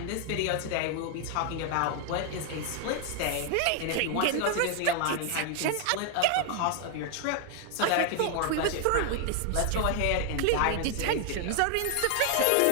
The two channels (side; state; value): both; different; correlation 0.00